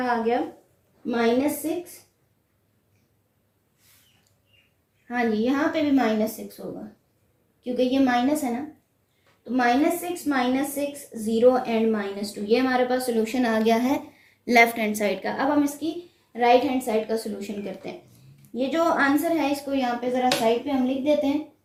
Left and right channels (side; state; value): both; identical; correlation 1.00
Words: आ गया, -6। हाँ जी, यहाँ पे भी -6 होगा क्योंकि ये माइनस है ना, तो -6 -6 0 एंड -2, ये हमारे पास सोल्यूशन आ गया है लेफ्ट हैंड साइड का। अब हम इसकी राइट हैंड साइड का सोल्यूशन करते हैं। ये जो आंसर है इसको यहाँ पे ज़रा साइड पे हम लिख देते हैं